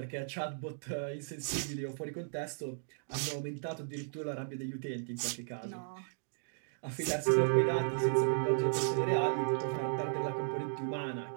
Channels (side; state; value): left; silent; digital silence